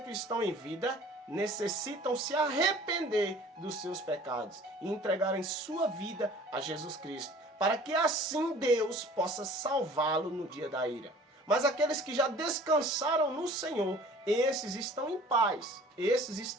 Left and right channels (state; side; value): normal; both; correlation 0.48